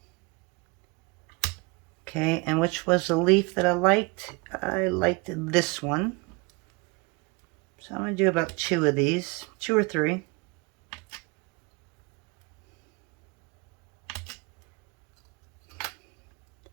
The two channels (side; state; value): left; quieter; 28.3 dB